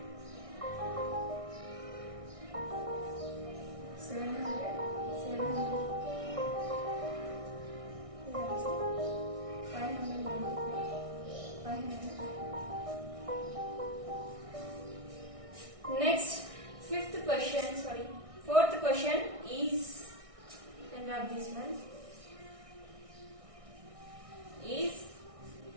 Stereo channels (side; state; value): left; late; 1.6 ms